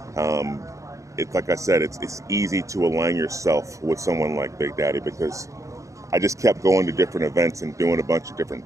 it's like I said, it's easy to align yourself with someone like Big Daddy, because I just kept going to different events and doing a bunch of different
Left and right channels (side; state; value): left; late; 0.15 ms